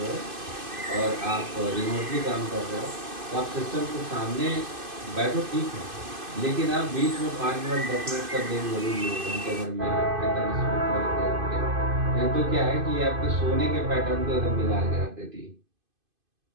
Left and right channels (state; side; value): late; left; 2.5 ms